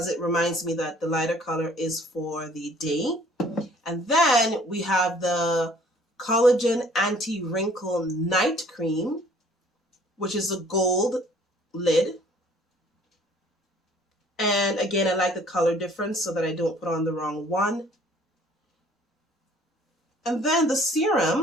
it reminds me that the lighter color is for the day. And then we have the Collagen Anti-Wrinkle Night Cream, which is a gold lid. And again, I like the color difference so that I don't put on the wrong one. And then the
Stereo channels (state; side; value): normal; both; correlation 0.55